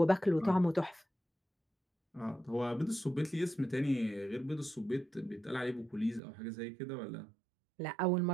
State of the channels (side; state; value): left; drops out; at 6.2 s